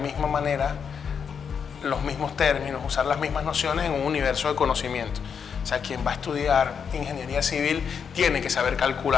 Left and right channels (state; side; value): quieter; right; 6.8 dB